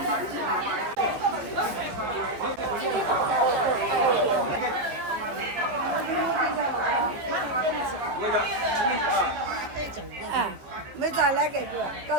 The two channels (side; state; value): left; late; 14 ms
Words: 啊，没咋来给这，搞